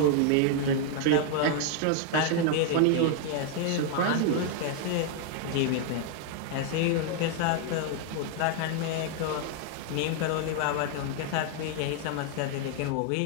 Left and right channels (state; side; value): different; both; correlation 0.00